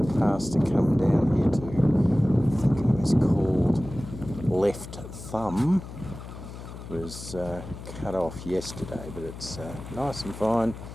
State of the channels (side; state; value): left; noise; hum, 12 dB below the sound